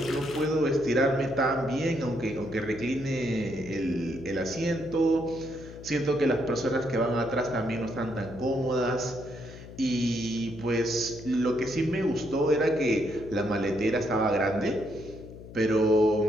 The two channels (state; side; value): noise; left; hum, 15 dB below the sound